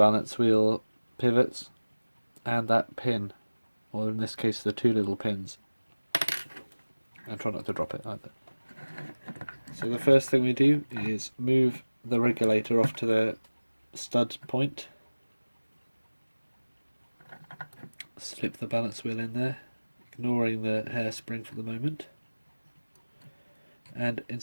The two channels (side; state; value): both; inverted; correlation -1.00